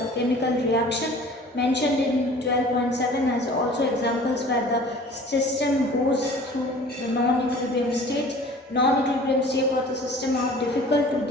chemical reaction mentioned in 12.7 as also examples where the system goes through the non-equilibrium state. Non-equilibrium state for the system are difficult to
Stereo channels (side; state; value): both; normal; correlation 0.46